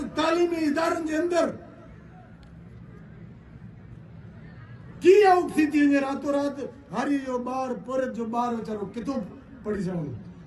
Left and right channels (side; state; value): both; identical; correlation 1.00